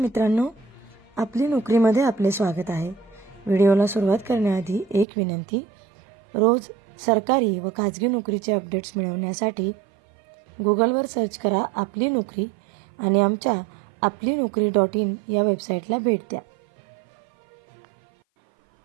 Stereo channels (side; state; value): left; drops out; at 5.1 s